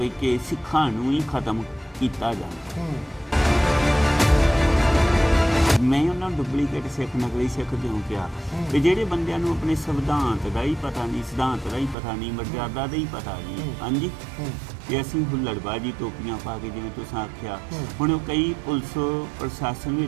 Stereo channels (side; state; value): left; drops out; at 12.0 s